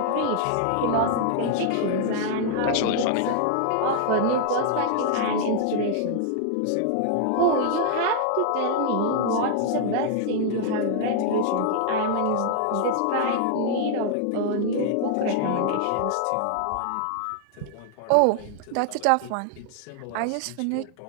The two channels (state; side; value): different; both; correlation 0.00